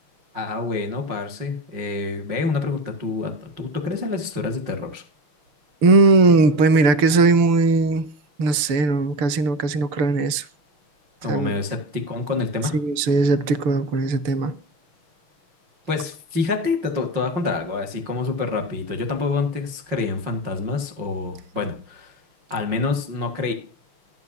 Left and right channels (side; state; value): left; late; 6.7 ms